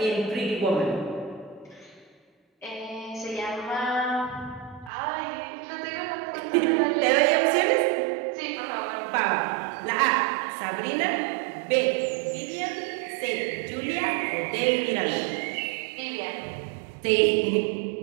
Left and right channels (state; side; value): drops out; left; at 4.9 s